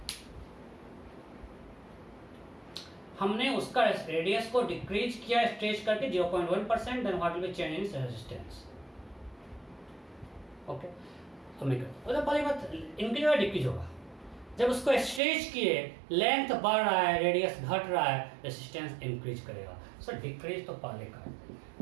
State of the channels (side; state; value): left; drops out; at 15.2 s